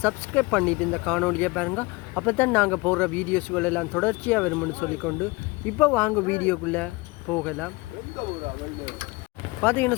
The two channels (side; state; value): right; quieter; 24.5 dB